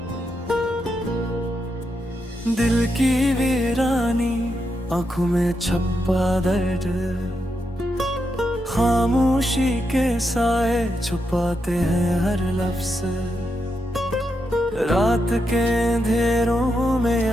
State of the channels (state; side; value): normal; both; correlation 0.84